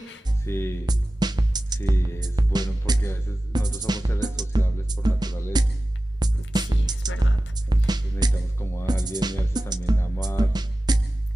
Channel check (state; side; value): normal; both; correlation 0.95